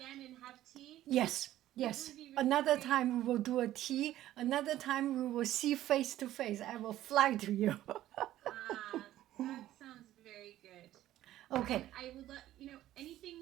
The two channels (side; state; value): left; quieter; 13.7 dB